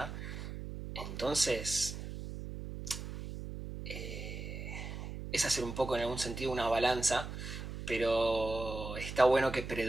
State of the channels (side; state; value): right; noise; hum, 8 dB below the sound